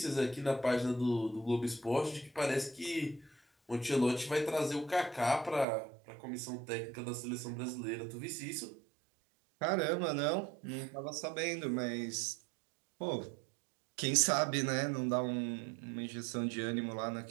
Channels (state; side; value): drops out; left; at 5.7 s